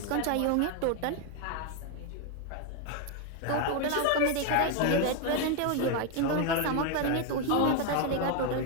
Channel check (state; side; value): different; both; correlation 0.01